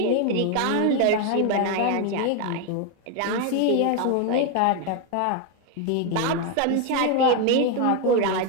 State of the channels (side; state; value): both; different; correlation 0.01